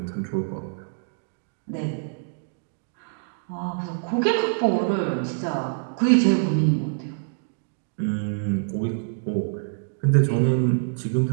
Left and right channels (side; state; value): left; silent; digital silence